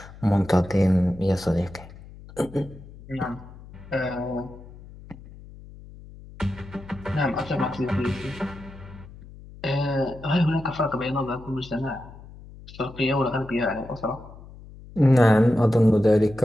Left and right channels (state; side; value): noise; left; hum, 18 dB below the sound